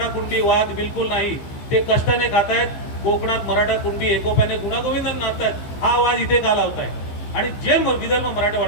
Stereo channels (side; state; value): right; late; 15 ms